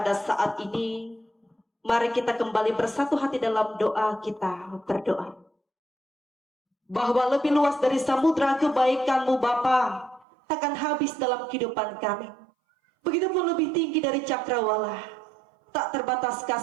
saat ini, mari kita kembali bersatu hati dalam doa kita berdoa. Bahwa lebih luas dari samudra kebaikan-Mu Bapa takkan habis dalam kehidupan kami. Begitupun lebih tinggi dari cakrawala, tak terbatas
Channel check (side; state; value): left; drops out; at 10.2 s